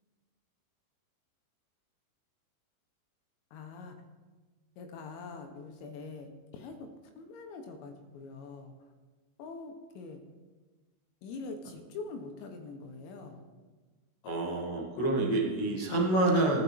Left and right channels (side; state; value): right; late; 22 ms